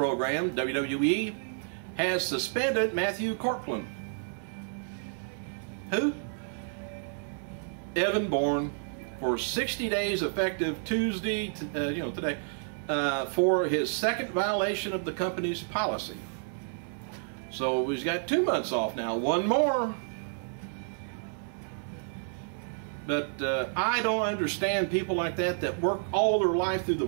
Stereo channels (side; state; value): left; silent; digital silence